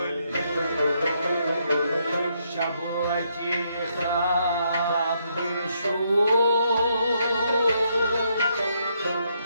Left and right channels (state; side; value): inverted; both; correlation -0.75